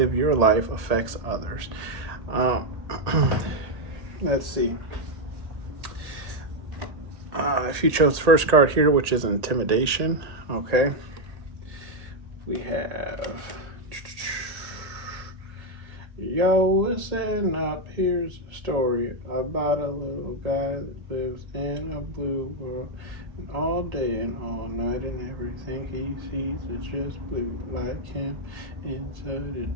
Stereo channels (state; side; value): late; left; 1.8 ms